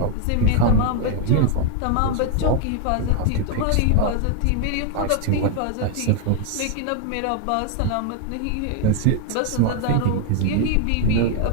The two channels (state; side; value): different; both; correlation 0.01